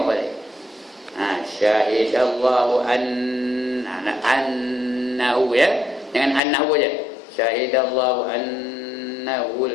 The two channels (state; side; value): drops out; right; at 6.4 s